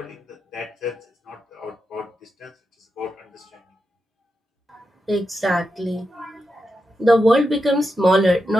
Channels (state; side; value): normal; both; correlation 0.87